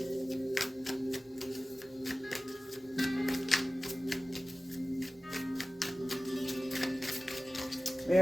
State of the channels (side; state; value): both; normal; correlation 0.97